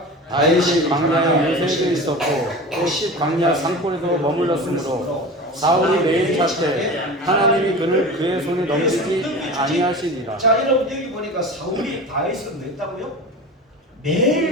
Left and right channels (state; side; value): normal; both; correlation 0.32